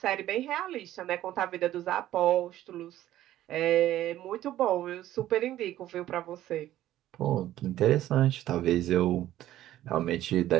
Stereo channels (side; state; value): left; quieter; 13.6 dB